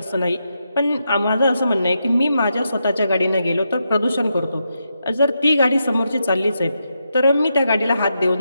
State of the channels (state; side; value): inverted; both; correlation -0.84